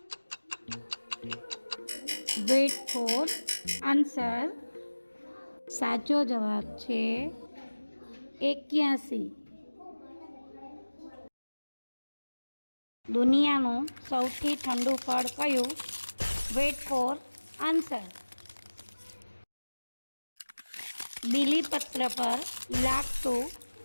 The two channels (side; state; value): both; inverted; correlation -1.00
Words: વેઇટ ફોર આન્સર. સાચો જવાબ છે 81. દુનિયાનું સૌથી ઠંડુ ફળ કયું? Weight for answer. બીલીપત્ર પર લાગતું